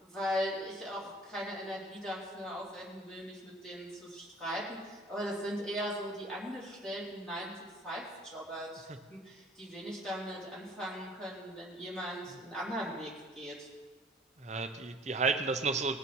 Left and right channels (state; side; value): normal; both; correlation 0.51